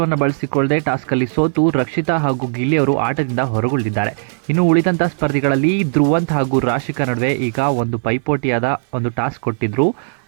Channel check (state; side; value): silent; left; 59 dB below the other